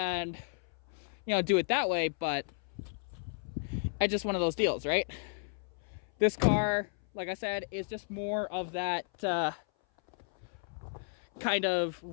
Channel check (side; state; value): right; silent; 56 dB below the other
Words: you know, do it that way, but it's just one of those deals, right? This car, like I said, is just more of that kind of